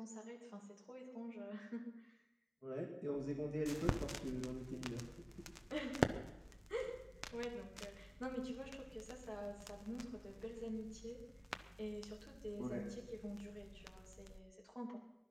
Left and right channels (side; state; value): both; identical; correlation 1.00